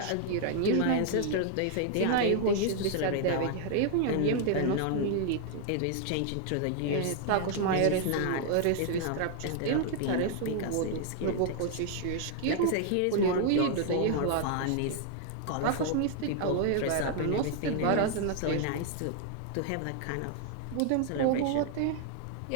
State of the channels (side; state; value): both; different; correlation 0.00